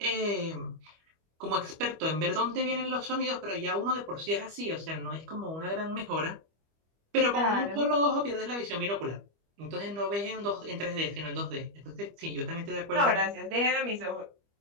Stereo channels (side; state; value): left; late; 25 ms